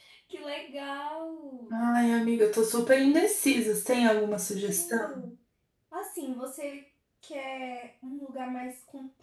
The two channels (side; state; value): both; identical; correlation 1.00